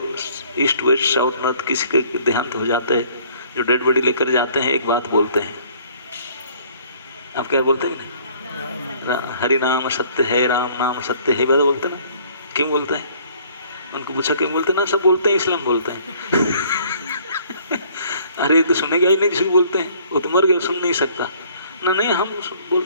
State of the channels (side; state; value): both; inverted; correlation -0.57